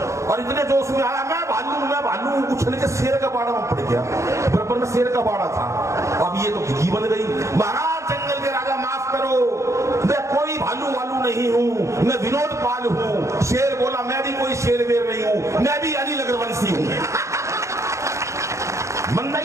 और इतने जोश में आया मैं भालू उछल के शेर का बाड़ा में पड़ गया। बराबर में शेर का बाड़ा था, अब ये तो घी बन गई। महाराज जंगल के राजा माफ करो, मैं कोई भालू वालू नहीं हूँ, मैं विनोद पाल हूँ। शेर बोला मैं भी कोई शेर वेर नहीं हूँ, मैं भी अनिल अग्रवंशी हूँ। मंदा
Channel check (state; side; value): late; left; 0.14 ms